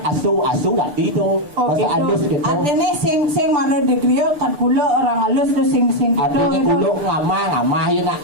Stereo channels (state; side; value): late; left; 6.8 ms